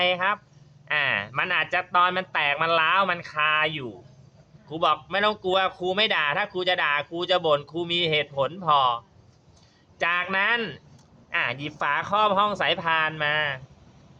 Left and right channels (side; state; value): both; identical; correlation 1.00